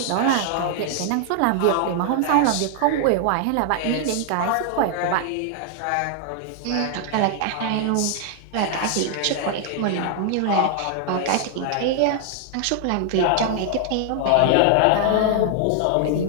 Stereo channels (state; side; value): different; both; correlation 0.00